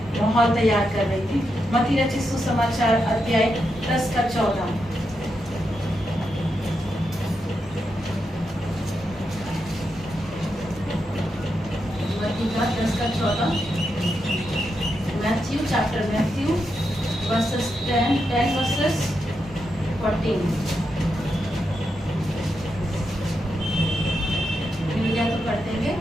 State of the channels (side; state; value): both; normal; correlation 0.85